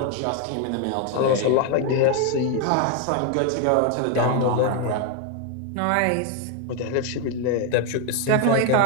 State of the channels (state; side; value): different; both; correlation 0.01